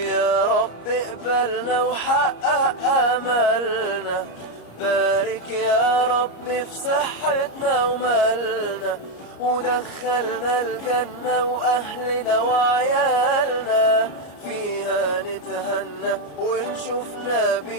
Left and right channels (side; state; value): right; late; 34 ms